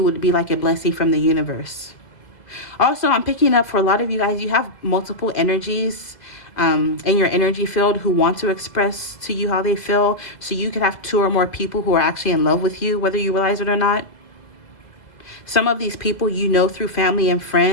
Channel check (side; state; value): right; late; 2.0 ms